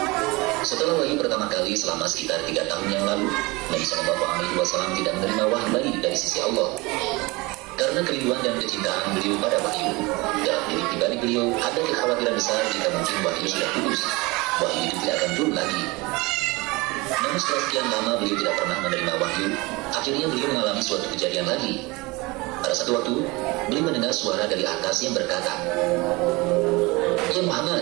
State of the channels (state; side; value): quieter; left; 23.9 dB